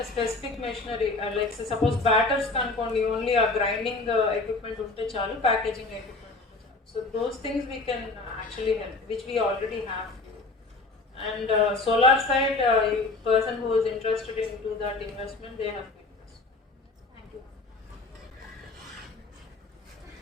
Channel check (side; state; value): right; quieter; 3.4 dB